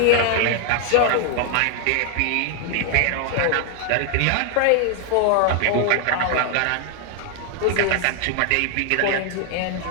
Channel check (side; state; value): both; different; correlation 0.00